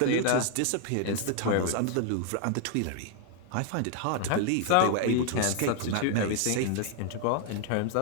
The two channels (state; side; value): different; both; correlation 0.00